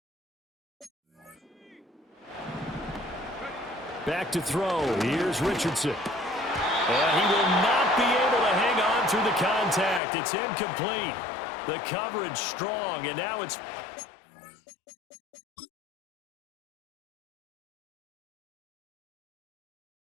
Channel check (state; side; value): drops out; right; at 10.0 s